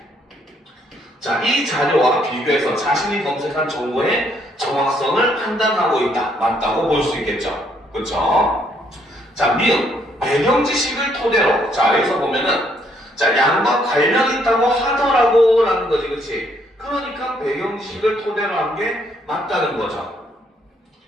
자, 이 자료와 비교해서 자신이 검색한 정보의 정확성을 판단하고 있다. 맞다고 볼 수 있겠죠. 그렇죠? 자, 미음. 배경 지식을 토대로. 자, 여기서 보면은 자, 양과 관련 있다고 하더라고 라는 거지, 그치? 그러니까 배경 지식을 토대로 한 게 맞다는 거죠.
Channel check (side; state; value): both; normal; correlation 0.69